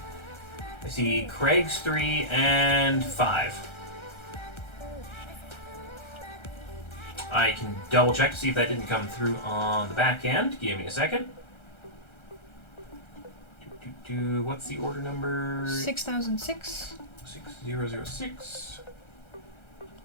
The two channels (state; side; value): late; right; 1.3 ms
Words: see Craig's 3 and 5. I can double check to see if that didn't come through on the back end. Give me a second. What's the order number? 6006. 6006.